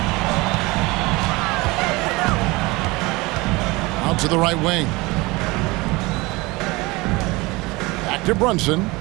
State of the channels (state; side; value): quieter; left; 23.0 dB